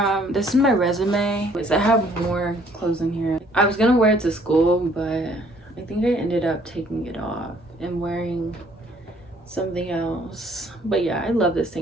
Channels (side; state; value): both; normal; correlation 0.61